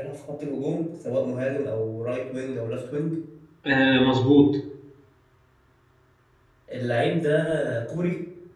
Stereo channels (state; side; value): identical; both; correlation 1.00